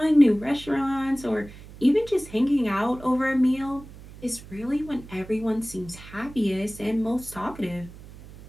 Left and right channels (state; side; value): noise; right; hum, 17 dB below the sound